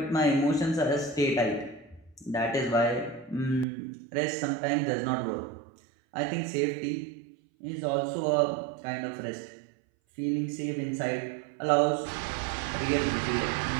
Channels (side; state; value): left; drops out; at 3.7 s